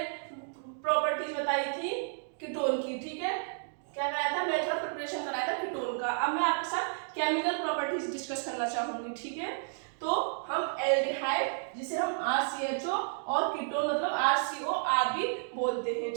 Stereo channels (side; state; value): left; silent; digital silence